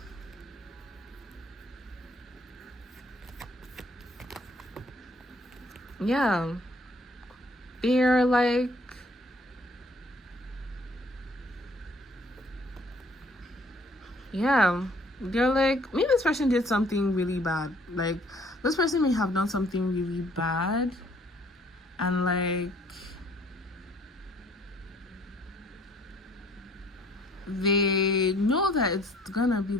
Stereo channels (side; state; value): both; normal; correlation 0.60